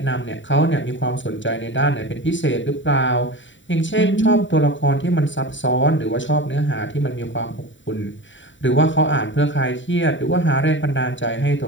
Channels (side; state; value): right; late; 0.55 ms